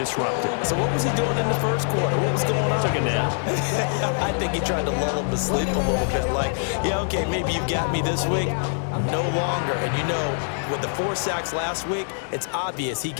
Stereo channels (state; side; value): silent; right; digital silence